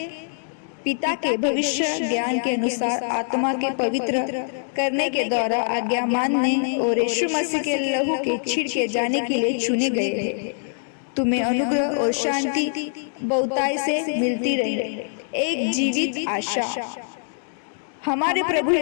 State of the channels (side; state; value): right; silent; digital silence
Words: पिता के भविष्य ज्ञान के अनुसार आत्मा के पवित्र करने के द्वारा आज्ञा मानने और यीशु मसीह के लहू के छिड़के जाने के लिए चुने गए हैं। तुम्हें अनुग्रह और शांति बहुताई से मिलती रहे। एक जीवित आशा हमारे प्रभु